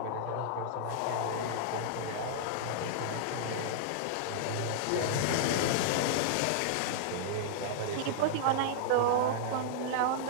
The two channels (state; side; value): different; both; correlation -0.02